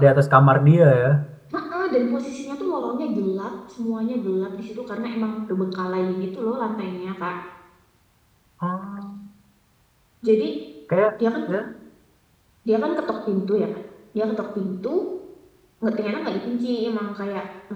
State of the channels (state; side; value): identical; both; correlation 1.00